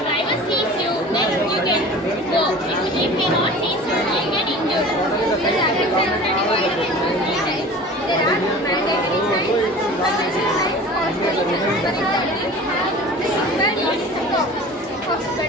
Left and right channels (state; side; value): normal; both; correlation 0.40